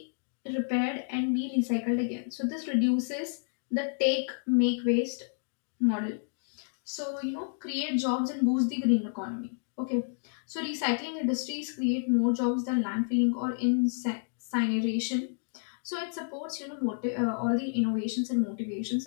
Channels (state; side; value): silent; right; digital silence